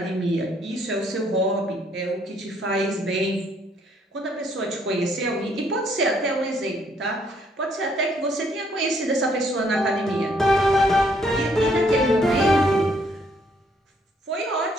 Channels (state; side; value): normal; both; correlation 0.68